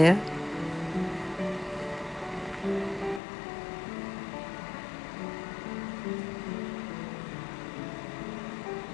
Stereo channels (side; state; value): right; drops out; at 3.2 s